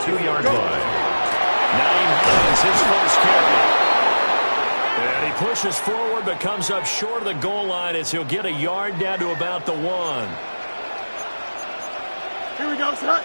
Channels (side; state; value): both; inverted; correlation -1.00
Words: 2-yard line. 9 is his first carry. And he pushes forward but comes up short of the goal line as he'll get a yard down to about the 1. Here we go, set.